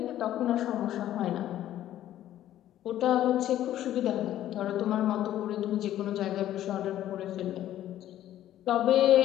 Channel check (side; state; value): right; quieter; 12.6 dB